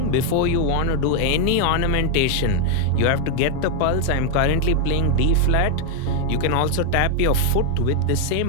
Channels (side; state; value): both; different; correlation 0.00